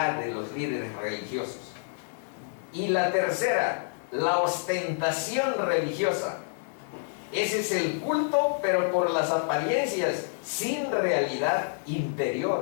de los líderes religiosos. Y la tercera, la ostentación religiosa. Ese es el culto, pero por las apariencias, sin realidad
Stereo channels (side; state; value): right; silent; digital silence